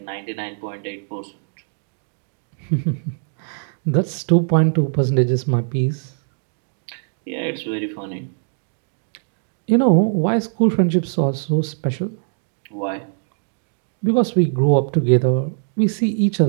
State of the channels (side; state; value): left; silent; digital silence